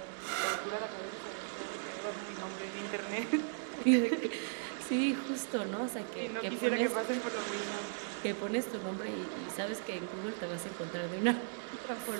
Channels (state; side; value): silent; left; digital silence